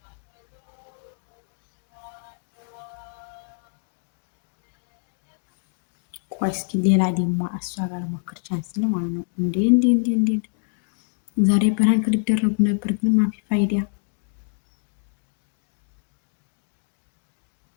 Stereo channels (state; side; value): silent; right; 61 dB below the other